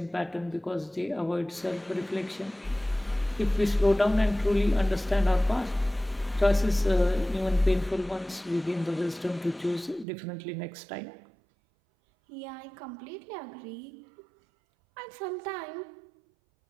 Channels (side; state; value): left; drops out; at 10.1 s